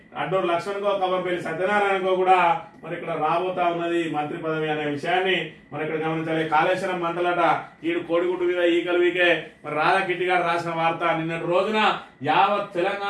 అడ్డూరు లక్ష్మణ్కో కవంపల్లి సత్యనారాయణకో కూడా మరి ఇక్కడ రాబోతా ఉన్నది మంత్రి పదవి అనే విషయాన్ని మనం ఇక్కడ గమనించాలి. కాళేశ్వరం మంటలట ఈడు కోడిగుడ్డు మీద ఈకలు వీకే మరి రాధా కిట్టి గారు రాసిన వార్త. నిన్నటి రోజున యావత్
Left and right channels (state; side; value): identical; both; correlation 1.00